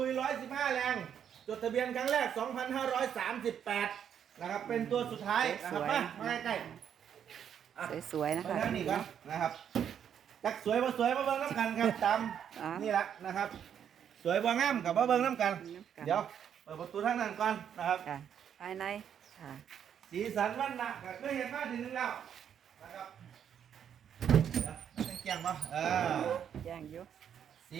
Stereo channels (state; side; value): quieter; left; 8.7 dB